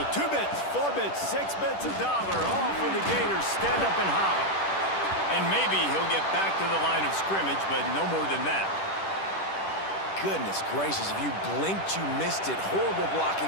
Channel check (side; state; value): right; late; 10 ms